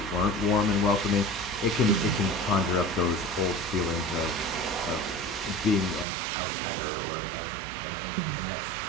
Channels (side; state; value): left; drops out; at 6.1 s